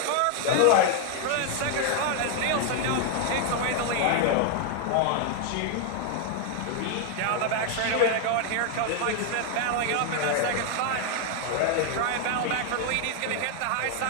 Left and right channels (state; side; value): different; both; correlation 0.00